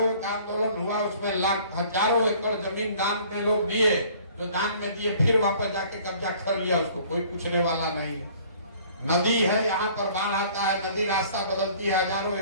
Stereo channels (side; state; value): both; inverted; correlation -0.54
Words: का आंदोलन हुआ, उसमें हजारों एकड़ जमीन दान में लोग दिए, जो दान में दिए फिर वापस जाके कब्जा कर लिया, उसको कोई पूछने वाला नहीं। नदी है, यहाँ पर बाढ़ आता है, नदी रास्ता बदलती है, हजारों